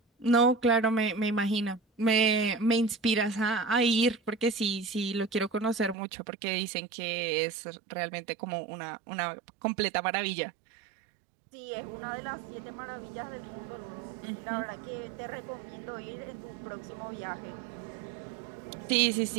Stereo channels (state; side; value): drops out; left; at 6.0 s